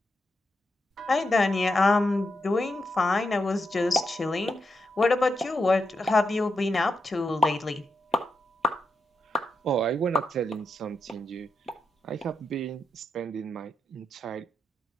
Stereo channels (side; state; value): both; normal; correlation 0.85